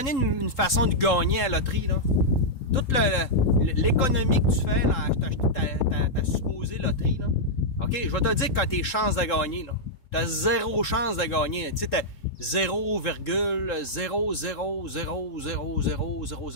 une façon de gagner à la loterie, là. Toute l'économie que tu fais, là, acheter ta supposée loterie, là. OK, je vais te dire quand tes chances de gagner, là. T'as zéro chance de gagner. Tu sais, t'as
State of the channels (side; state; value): right; late; 3.7 ms